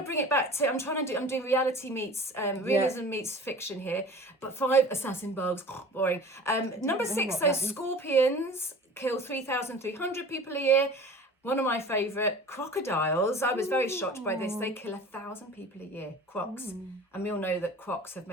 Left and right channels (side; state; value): both; normal; correlation 0.41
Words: bring it back to. I'm doing reality meets realism meets fiction here. But 5 assassin bugs, boring. Number 6, so scorpions kill 3,300 people a year. One of my favourite, crocodiles. I was very shocked by this. They kill 1,000 people a year. Crocs, and we all know that crocs have